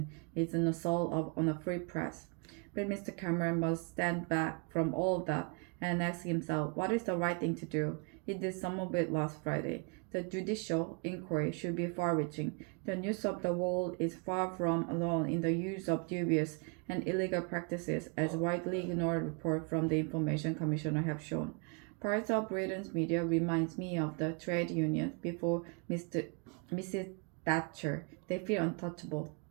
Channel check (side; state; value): left; quieter; 36.2 dB